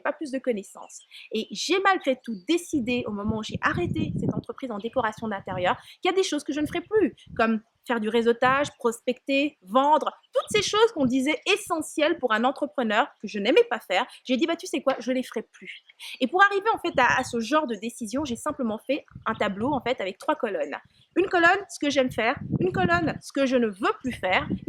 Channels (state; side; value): identical; both; correlation 1.00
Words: pas plus de connaissances. Et j'ai malgré tout décidé, au moment où j'ai arrêté cette entreprise en décoration d'intérieur, qu'il y a des choses que je ne ferai plus, comme faire du réseautage, prospecter, vendre, toutes ces choses qu'on disait essentielles pour un entrepreneur que je n'aimais pas faire. J'ai dit, tu sais quoi, je ne les ferai plus. Et pour arriver en fait à ce genre de décision, j'ai simplement fait un tableau en fait avec 3 colonnes. Une colonne, ce que j'aime faire, une colonne, ce que je ne veux plus faire,